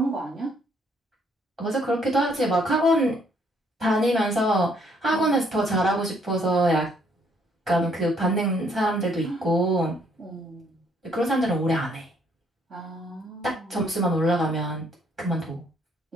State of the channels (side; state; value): both; normal; correlation 0.67